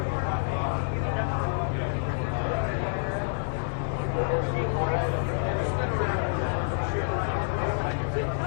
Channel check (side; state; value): right; silent; digital silence